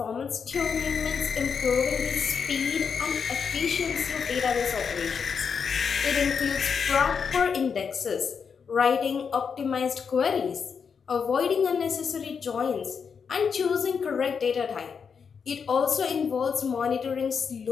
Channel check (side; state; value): right; quieter; 6.2 dB